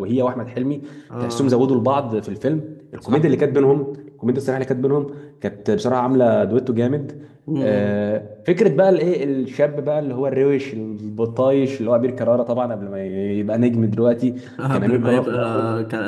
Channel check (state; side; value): identical; both; correlation 1.00